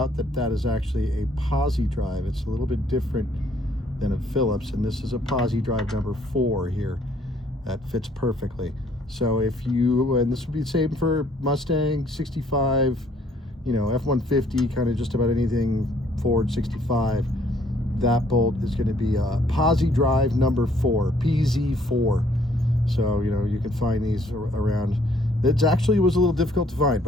that that is actually a pozidrive. It's a little bit different than a Phillips, and this is a pozidrive number 4 here. That fits perfectly. So if you, and this would be the same for Mustang 65, F-150, kind of just about anything Ford 65, that bolt is going to be a pozidrive number 4, PZ4. So, you can find these around. It actually was a little difficult to find,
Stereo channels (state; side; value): normal; both; correlation 0.63